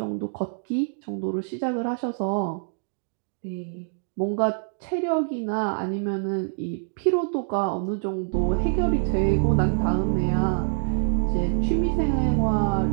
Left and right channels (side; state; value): left; silent; digital silence